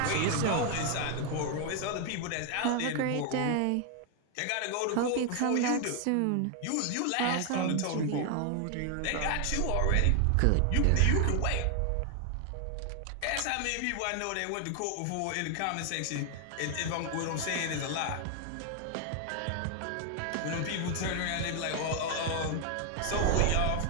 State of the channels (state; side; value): different; both; correlation 0.00